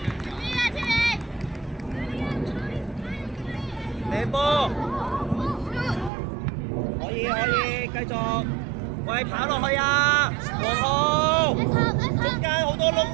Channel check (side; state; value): left; drops out; at 6.1 s